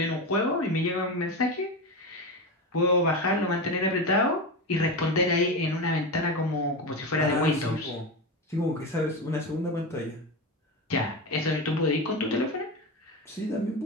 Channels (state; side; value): normal; both; correlation 0.19